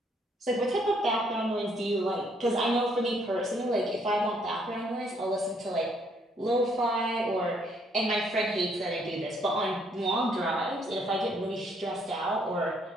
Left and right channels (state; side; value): normal; both; correlation 0.68